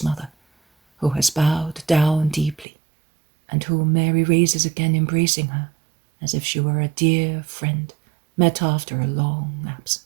mother, who has bowed down deeply, and whom Mary raises again, embracing her as if she were a dear friend met after a long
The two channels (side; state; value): left; drops out; at 2.7 s